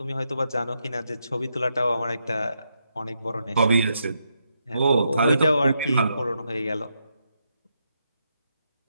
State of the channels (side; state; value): both; inverted; correlation -0.82